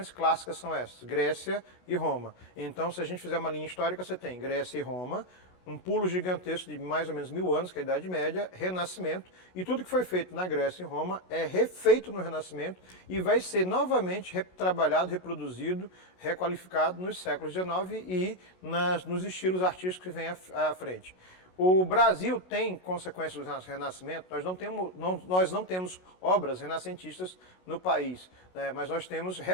clássicas são essas? Grécia e Roma. Então, se a gente fizer uma linha histórica, você tem Grécia e Roma, um pulo gigantesco de mais ou menos 1000 anos, que é a Idade Média, Renascimento, e tudo que foi feito na Grécia e Roma é refeito no Renascimento e vai ser novamente retrabalhado, reproduzido, requalificado nos séculos XIX e nos estilos artísticos que vêm à frente. O Brasil tem consequências do Renascimento, nós não temos obras renascentistas no país, né? Mas nós temos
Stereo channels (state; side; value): late; right; 27 ms